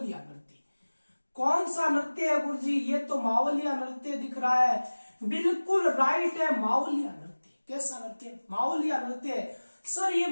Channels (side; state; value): both; inverted; correlation -1.00